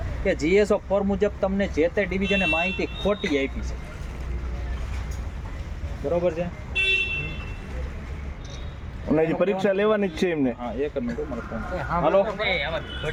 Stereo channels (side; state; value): both; identical; correlation 1.00